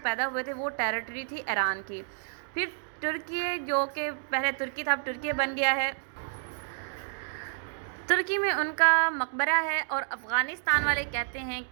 पैदा हुए थे वो टेरिटरी थी ईरान की। फिर तुर्की, जो कि पहले तुर्की था, अब तुर्की बन गया है। तुर्की में उनका मकबरा है और अफ़गानिस्तान वाले कहते हैं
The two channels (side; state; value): left; silent; digital silence